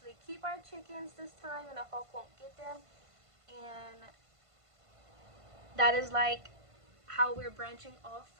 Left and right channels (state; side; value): late; left; 1.5 ms